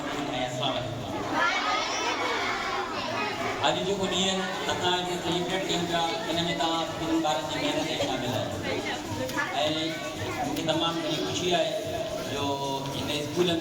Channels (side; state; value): both; identical; correlation 1.00